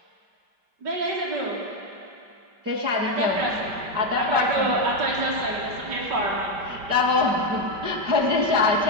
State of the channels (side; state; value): left; late; 5.1 ms